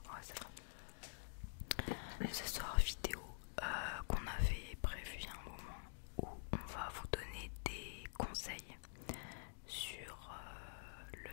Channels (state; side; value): silent; right; digital silence